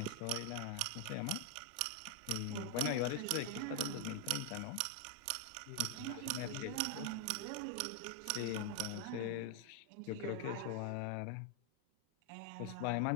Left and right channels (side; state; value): both; different; correlation 0.00